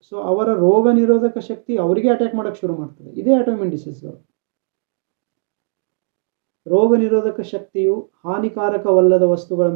ಸೊ ಅವರ ರೋಗ ನಿರೋಧಕ ಶಕ್ತಿ ಅವರಿಗೆ ಅಟ್ಯಾಕ್ ಮಾಡೋಕ್ಕೆ ಶುರು ಮಾಡ್ತದೆ. ಇದೇ ಆಟೋಇಮ್ಯೂನ್ ಡಿಸೀಸ್ಗಳು. ರೋಗ ನಿರೋಧಕ ಶಕ್ತಿಯು ಹಾನಿಕಾರಕವಲ್ಲದ ವಸ್ತುಗಳ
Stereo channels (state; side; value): silent; left; digital silence